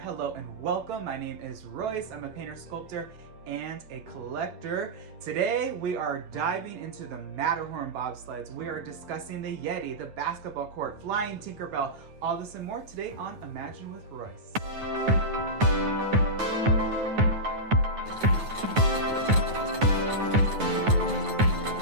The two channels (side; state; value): left; late; 9.3 ms